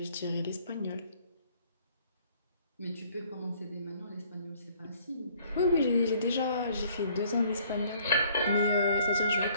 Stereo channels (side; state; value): both; inverted; correlation -0.60